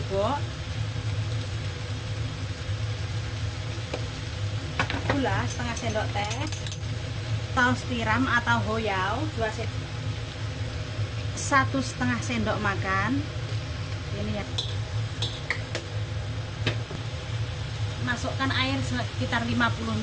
gula setengah sendok teh, saus tiram atau hoyau 1,5 sendok makan. Ini ya, masukkan air sekitar 50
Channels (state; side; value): identical; both; correlation 1.00